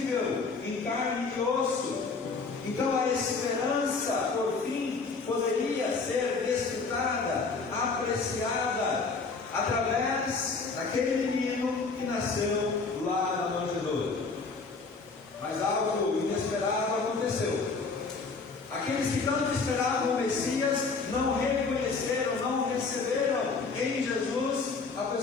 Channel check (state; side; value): quieter; right; 4.4 dB